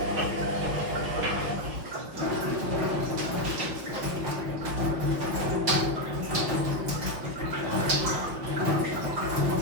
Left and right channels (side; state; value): left; late; 5.7 ms